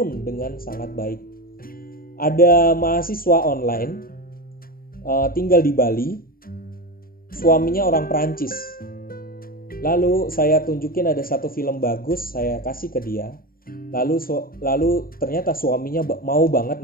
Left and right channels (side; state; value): right; late; 0.42 ms